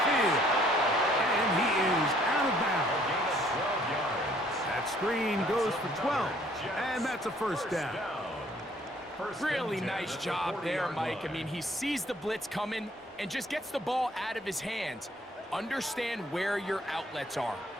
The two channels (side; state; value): both; normal; correlation 0.61